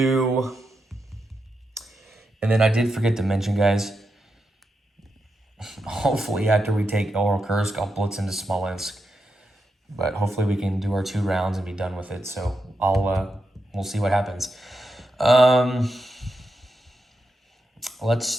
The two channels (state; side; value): normal; both; correlation 0.86